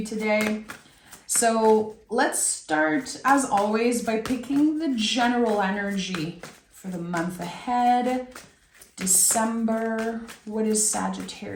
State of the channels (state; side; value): identical; both; correlation 1.00